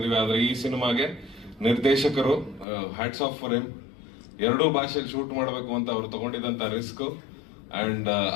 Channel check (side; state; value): right; drops out; at 2.7 s